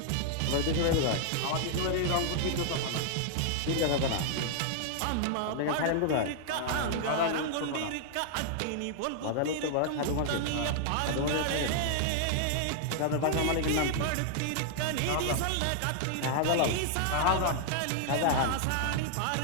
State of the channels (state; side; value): different; both; correlation -0.01